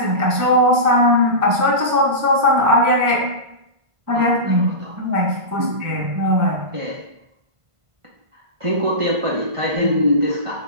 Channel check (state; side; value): late; left; 1.5 ms